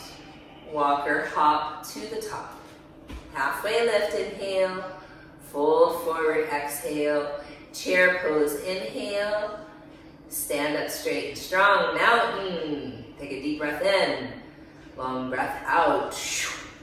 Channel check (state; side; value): identical; both; correlation 1.00